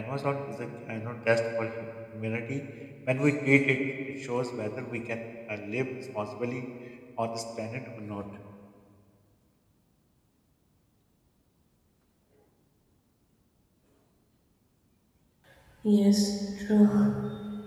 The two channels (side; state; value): both; identical; correlation 1.00